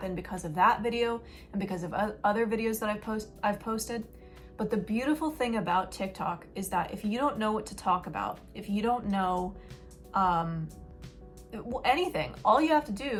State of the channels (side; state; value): both; identical; correlation 1.00